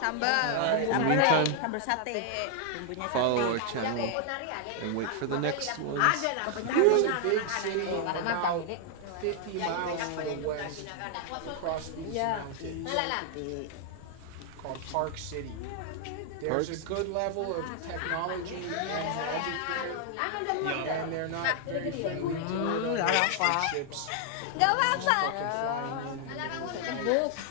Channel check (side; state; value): both; different; correlation 0.00